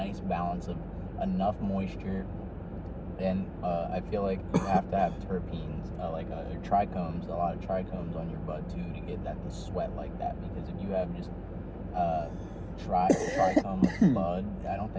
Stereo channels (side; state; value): both; identical; correlation 1.00